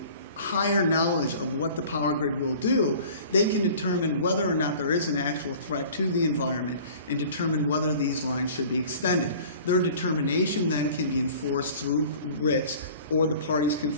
higher knowledge of what the power grid will do. They can determine whether or not there is an actual threat to the environment and determine whether these lines should be extended. Their determination then can be enforced through writs, or the parties can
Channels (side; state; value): both; inverted; correlation -0.45